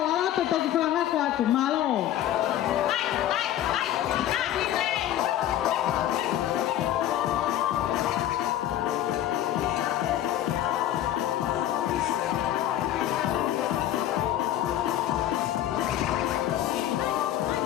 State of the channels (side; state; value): right; quieter; 12.2 dB